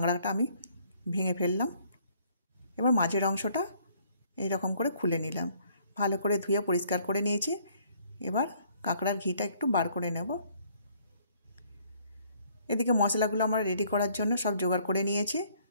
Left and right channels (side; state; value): both; inverted; correlation -0.63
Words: আমি ভেঙে ফেললাম। এবার মাঝের অংশটা এইরকম করে খুলে নিলাম, ভালো করে ধুয়ে পরিষ্কার করে নিয়েছি। এবার কাঁকড়ার ঘিটা একটু বার করে নেব। এদিকে মশলাগুলো আমার রেডি করার জন্য সব জোগাড় করে নিয়েছি।